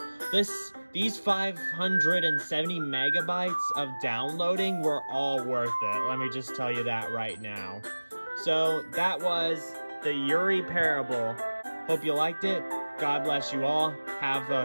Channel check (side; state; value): both; inverted; correlation -1.00